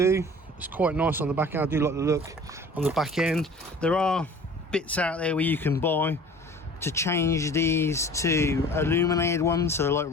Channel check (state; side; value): normal; both; correlation 0.45